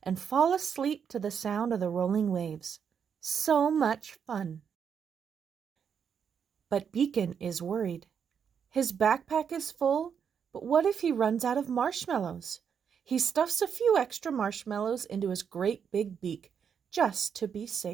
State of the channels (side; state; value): left; quieter; 7.3 dB